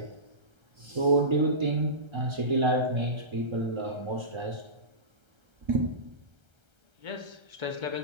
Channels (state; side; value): late; left; 1.3 ms